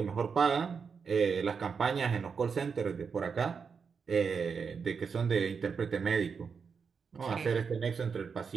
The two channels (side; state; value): left; quieter; 5.8 dB